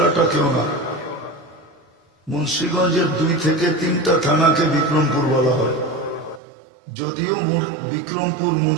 না, মুন্সিগঞ্জের 2 থেকে 3টা থানাকে বিক্রমপুর বলা হয়। যদিও বিক্রমপুর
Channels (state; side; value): drops out; left; at 6.4 s